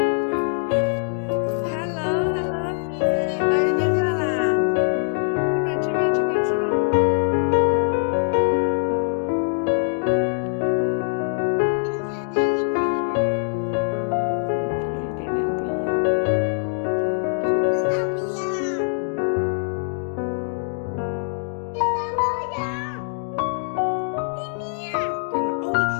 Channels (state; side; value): silent; right; 63 dB below the other